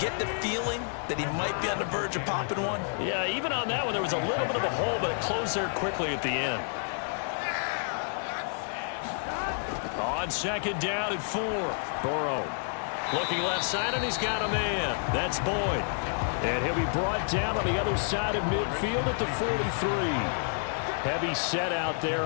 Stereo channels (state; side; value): silent; right; digital silence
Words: the feeling that he might be on the verge of popping one. Yeah, even on that one, there was a little bit of a hole, but it closed there quickly at the end. On 2nd down and 4. Burrow looking left side, and he's got a man. That's Boyd. And he'll be brought down on the other side of midfield at the 43. Heavy set out there